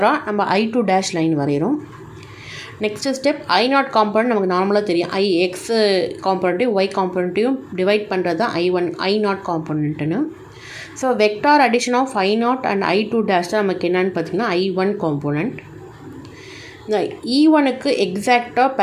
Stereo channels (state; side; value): identical; both; correlation 1.00